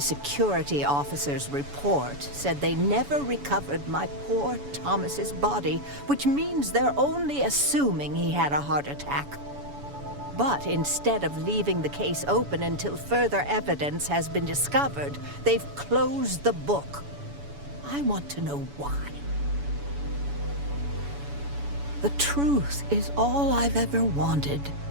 officer's report said they never recovered my poor Thomas's body, which means they're only assuming he had a heart attack. But instead of leaving the case open until further evidence has been discovered, they've closed the book. I want to know why. The truth is all I've ever wanted.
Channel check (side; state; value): left; late; 7.0 ms